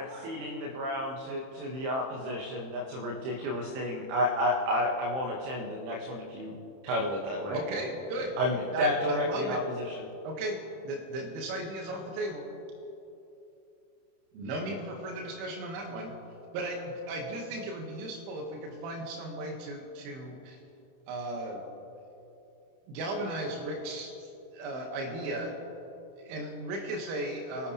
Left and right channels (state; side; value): late; left; 31 ms